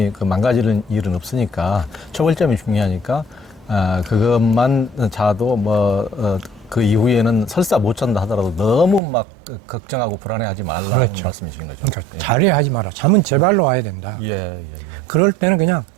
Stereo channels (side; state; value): left; drops out; at 9.0 s